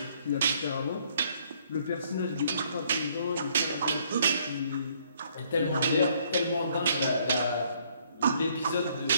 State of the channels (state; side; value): inverted; both; correlation -0.65